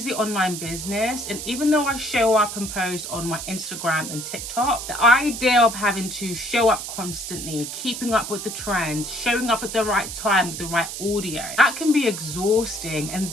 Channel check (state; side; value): noise; right; hiss, 7 dB below the sound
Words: online business, and even though I show up and post on my Instagram and TikTok, the idea of having to show up constantly, keeping up with the trends, showing up at the right time with the right audio, that can be exhausting. And